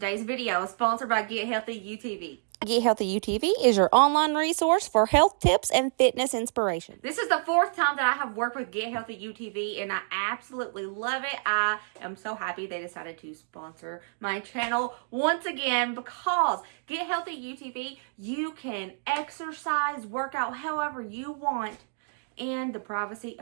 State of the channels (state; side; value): silent; left; digital silence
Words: video is sponsored by Get Healthy UTV. Get Healthy UTV is your online resource for health tips and fitness inspiration. This is the fourth time that I have worked with Get Healthy UTV, and I absolutely love it. I am so happy they decided to sponsor my channel once again because Get Healthy UTV, you can exercise, work out however you want in the privacy